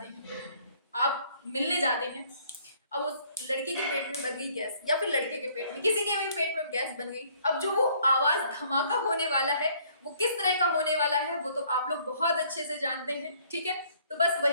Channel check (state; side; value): inverted; both; correlation -0.61